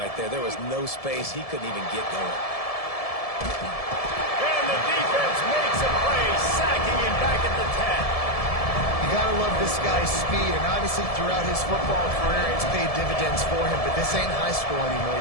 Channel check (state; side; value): late; right; 1.7 ms